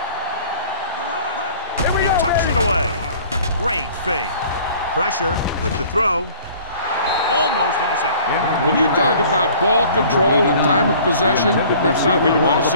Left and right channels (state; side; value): inverted; both; correlation -0.50